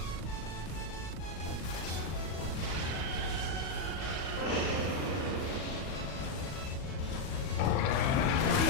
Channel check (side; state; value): right; late; 38 ms